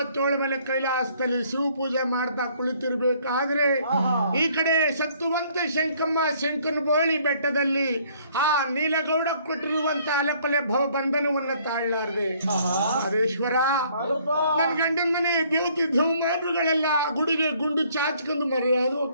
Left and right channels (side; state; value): both; inverted; correlation -0.62